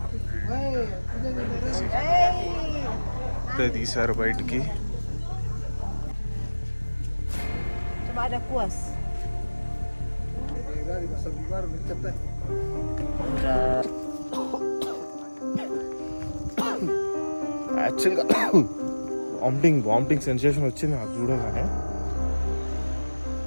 ఇప్పుడే తీశారు బయటికి. Ada kuas. యాక్చువల్గా vomiting sensation వచ్చింది నాకు చూడగానే.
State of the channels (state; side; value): inverted; both; correlation -1.00